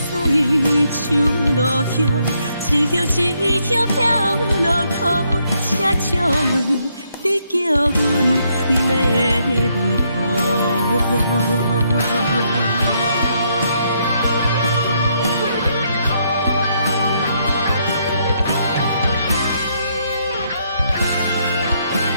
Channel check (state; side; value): inverted; both; correlation -0.75